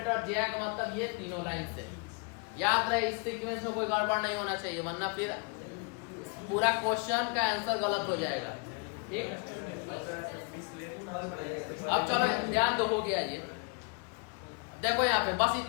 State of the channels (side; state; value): right; quieter; 35.0 dB